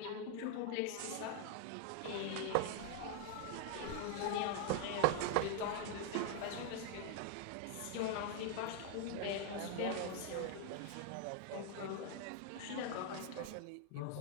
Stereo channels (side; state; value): both; different; correlation 0.00